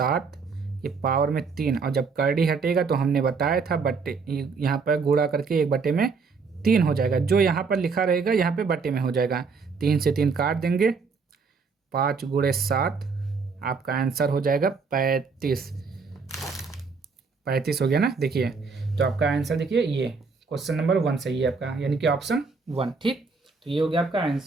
ये पावर में 3, और जब करड़ी हटेगा तो हमने बताया था बट्टे, यहाँ पर गुणा करके 1/3 हो जाएगा। जो यहाँ पर लिखा रहेगा यहाँ पे बट्टे में हो जाएगा। 3 से 3 काट देंगे, 5 गुणे 7, आपका आंसर हो जाएगा 35। 35 हो गया ना। देखिए तो आपका आंसर देखिए, ये क्वेश्चन नंबर 1 सही है आपका, यानी कि ऑप्शन 1, ठीक। तो ये हो गया आपका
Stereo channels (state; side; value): quieter; left; 4.9 dB